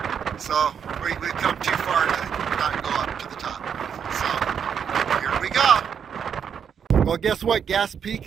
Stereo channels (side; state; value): left; quieter; 7.5 dB